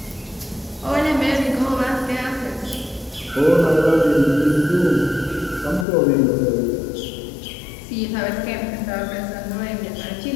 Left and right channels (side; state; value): right; drops out; at 5.9 s